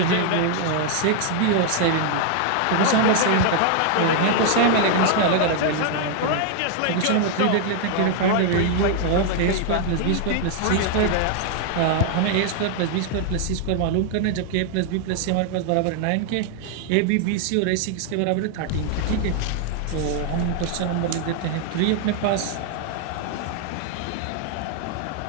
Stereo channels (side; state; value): both; different; correlation 0.00